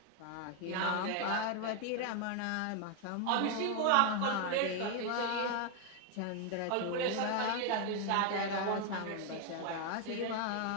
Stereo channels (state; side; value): different; both; correlation 0.01